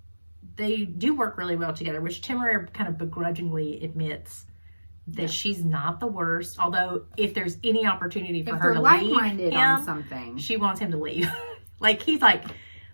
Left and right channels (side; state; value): both; inverted; correlation -1.00